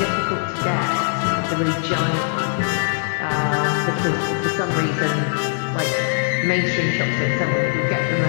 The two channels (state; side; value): silent; right; 59 dB below the other